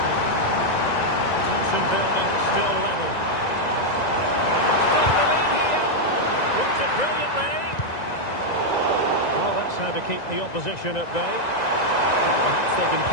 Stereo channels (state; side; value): late; right; 1.9 ms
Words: Tension building, still level. Take the lead here. Worked it brilliantly. Well, that's how to keep the opposition at bay. Perhaps they can